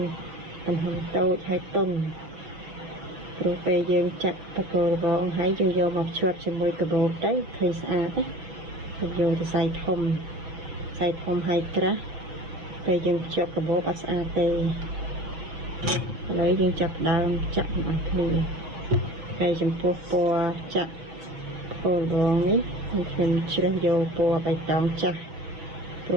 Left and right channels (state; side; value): late; left; 6.5 ms